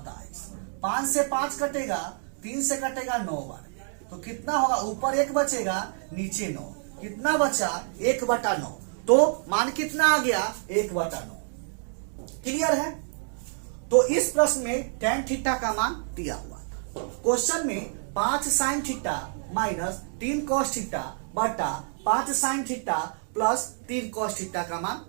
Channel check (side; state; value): left; silent; 60 dB below the other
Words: 5 से 5 कटेगा, 3 से कटेगा 9 बार, तो कितना होगा, ऊपर 1 बचेगा नीचे 9, कितना बचा 1/9। तो मान कितना आ गया 1/9। क्लियर है। तो इस प्रश्न में tan थीटा का मान दिया हुआ था। क्वेश्चन में 5 sin theta minus 3 cos theta बटा 5 sin theta plus 3 cos theta का मान